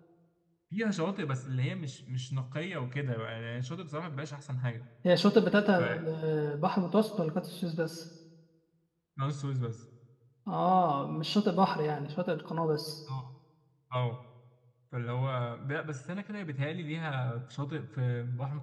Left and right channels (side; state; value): both; identical; correlation 1.00